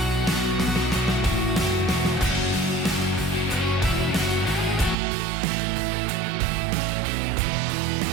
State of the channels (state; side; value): drops out; left; at 5.0 s